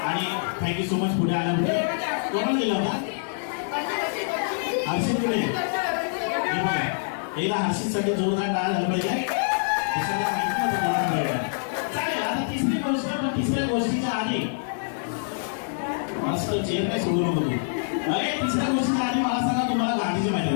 आणि थँक्यू सो मच पुढे आल्यामुळे. कोणाला दिला होता? हर्षित पुढे. हे बघा. एकदा हर्षितसाठी जोरदार टाळ्या झाला पाहिजे. चालेल. आता तिसरी गोष्ट. पण तिसऱ्या गोष्टीच्या आधी मस्त चेअर नाही सोडू नको तू. अरे तिसऱ्या गोष्टीच्या आधी मला सांगा, तुम्हाला गांधीची माहिती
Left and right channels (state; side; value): silent; right; digital silence